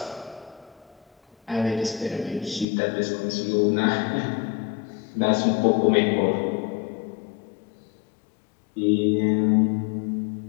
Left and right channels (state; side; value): drops out; right; at 2.7 s